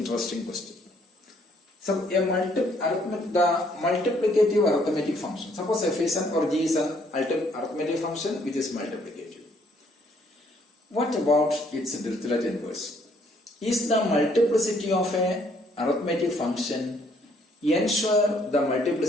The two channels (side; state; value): both; normal; correlation 0.66